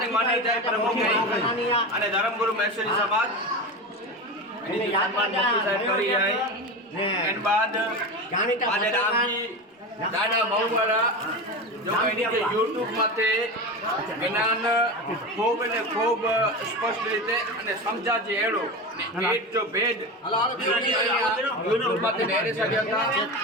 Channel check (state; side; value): normal; both; correlation 0.23